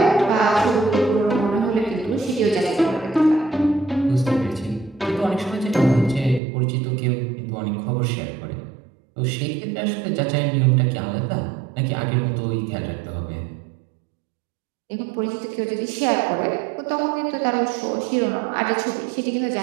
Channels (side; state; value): left; drops out; at 6.4 s